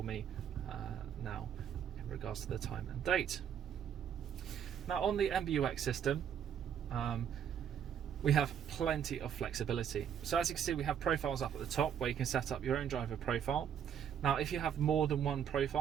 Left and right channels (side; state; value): left; quieter; 8.6 dB